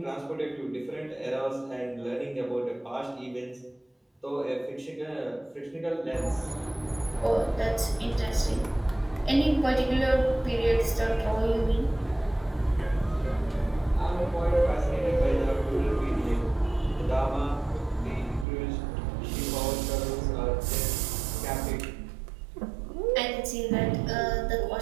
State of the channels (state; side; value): drops out; left; at 18.4 s